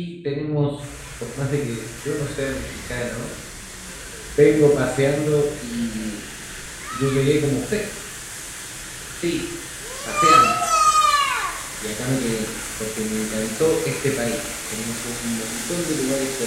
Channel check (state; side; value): identical; both; correlation 1.00